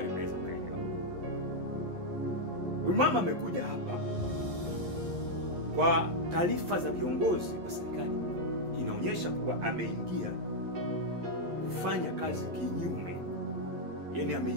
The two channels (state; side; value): late; left; 11 ms